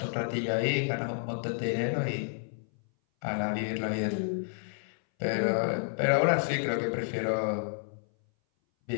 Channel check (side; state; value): right; silent; 58 dB below the other